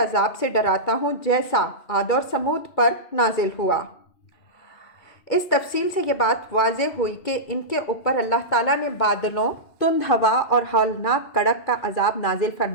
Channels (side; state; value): right; late; 2.5 ms